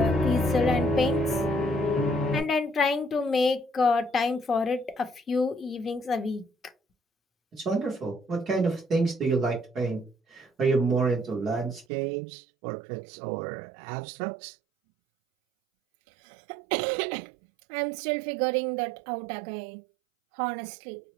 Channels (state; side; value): drops out; left; at 11.9 s